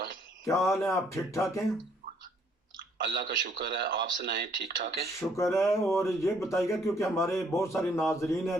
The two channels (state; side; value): normal; both; correlation 0.65